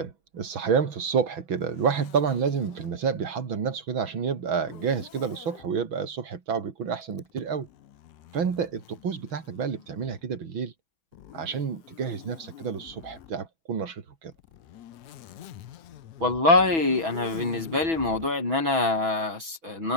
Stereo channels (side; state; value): left; late; 6.1 ms